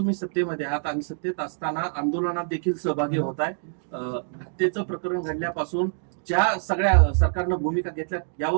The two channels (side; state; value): left; silent; 61 dB below the other